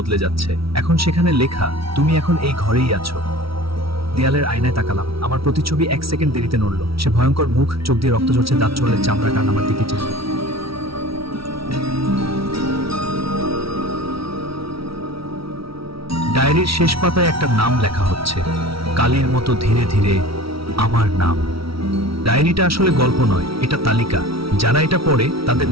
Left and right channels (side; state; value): left; late; 0.75 ms